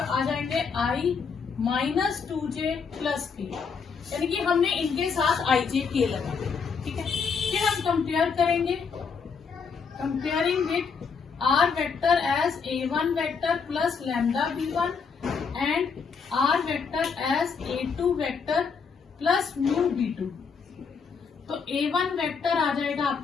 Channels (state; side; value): quieter; right; 5.7 dB